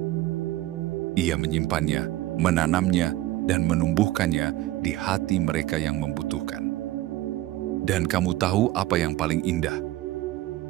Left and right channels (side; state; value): left; quieter; 16.2 dB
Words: Ia menyimpannya, menanamnya, dan menumbuhkannya di hati mereka yang membutuhkan. Dan kamu tahu apa yang paling indah?